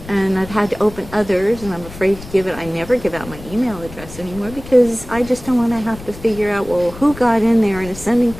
and I've had to open others, and I'm afraid to give it. I never give out my email address anymore because I just don't want to have to figure out, well, who got in there and is sending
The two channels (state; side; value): noise; left; rumble, 15 dB below the sound